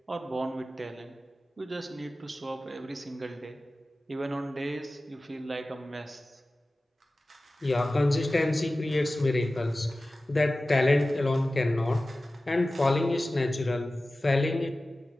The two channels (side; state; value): both; normal; correlation 0.96